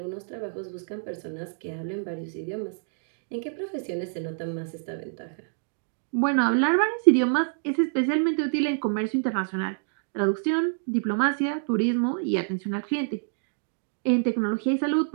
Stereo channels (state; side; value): silent; left; digital silence